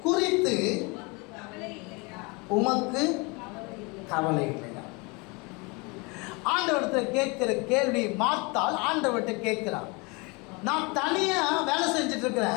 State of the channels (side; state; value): right; quieter; 28.7 dB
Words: குறித்து உமக்கு கவலை இல்லையா? ஆண்டவரிடத்தில் கேட்கிற கேள்வி மார்த்தாள் ஆண்டவர்கிட்ட கேட்கிறார். நான் தனியா வேலை செஞ்சுட்டு